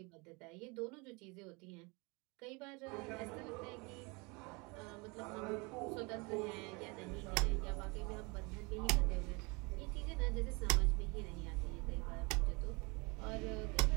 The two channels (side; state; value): left; quieter; 28.2 dB